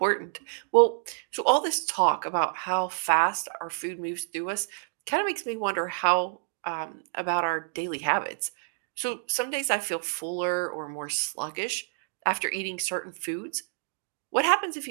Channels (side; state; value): left; silent; digital silence